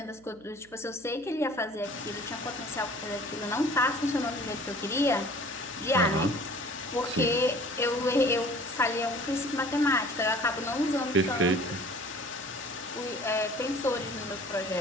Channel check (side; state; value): right; noise; hum, 27 dB below the sound